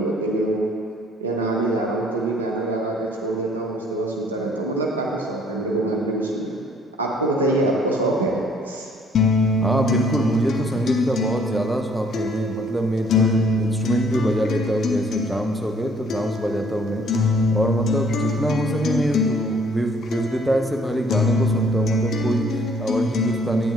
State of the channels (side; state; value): both; normal; correlation 0.60